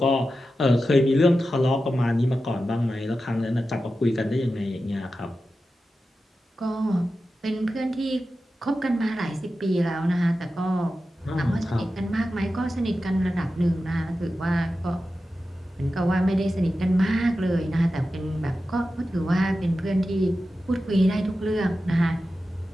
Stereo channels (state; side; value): normal; both; correlation 0.92